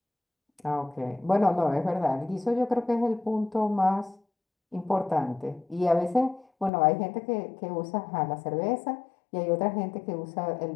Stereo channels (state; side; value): drops out; right; at 6.7 s